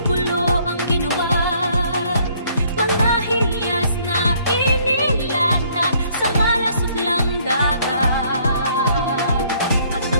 pulo ang ginawa. Mga hiyas na inilatag sa malasutlang dagat. At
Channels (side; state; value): both; inverted; correlation -0.64